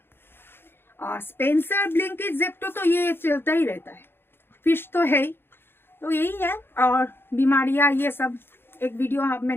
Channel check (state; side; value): late; right; 0.11 ms